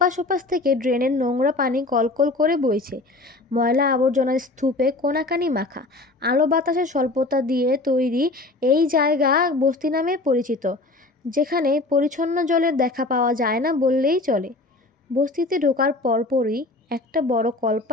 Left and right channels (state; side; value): quieter; right; 3.0 dB